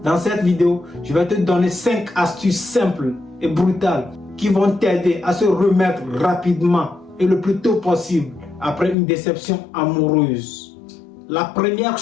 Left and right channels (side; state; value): right; drops out; at 9.0 s